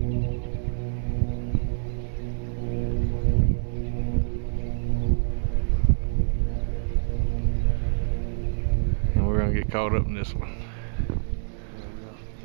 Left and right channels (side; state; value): left; silent; digital silence